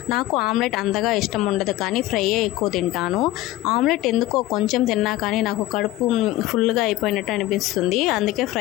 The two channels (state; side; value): quieter; right; 16.3 dB